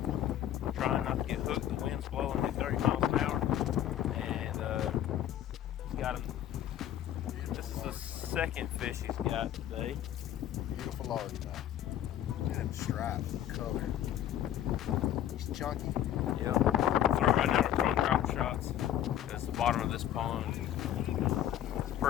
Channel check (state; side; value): quieter; right; 11.5 dB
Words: trying not to get hooked. The wind's blowing at 30 miles an hour, and he's got him. This is the second fish he's got today. Beautiful largemouth. Look at him stripe color. He's chunky. Yep. So right now we're throwing drop shots because the bottom of this pond is